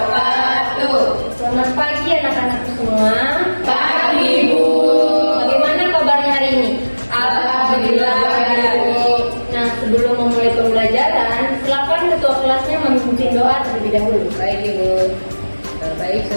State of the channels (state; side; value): inverted; both; correlation -1.00